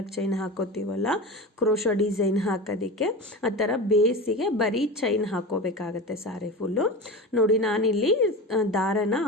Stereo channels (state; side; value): normal; both; correlation 0.27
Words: ಚೈನ್ ಹಾಕೋತೀವಲ್ಲ ಕ್ರೋಶ ಡಿಸೈನ್ ಹಾಕೋದಕ್ಕೆ, ಆ ಥರ ಬೇಸಿಗೆ ಬರೀ ಚೈನ್ ಹಾಕೋಬೇಕಾಗತ್ತೆ ಸಾರಿ ಫುಲ್ಲು ನೋಡಿ. ನಾನಿಲ್ಲಿ ದಾರನ